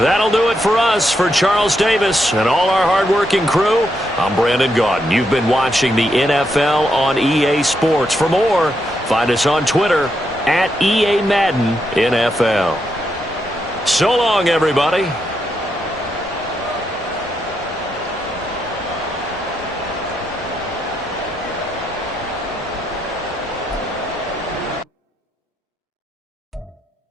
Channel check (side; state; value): both; normal; correlation 0.81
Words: do it for us. For Charles Davis and all our hardworking crew, I'm Brandon Gaudin. You've been watching the NFL on EA Sports. For more, find us on Twitter @EA Madden NFL. So long, everybody.